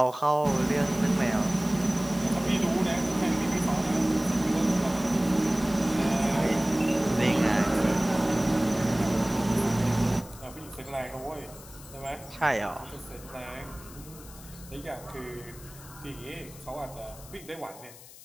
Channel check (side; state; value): left; noise; hiss, 19 dB below the sound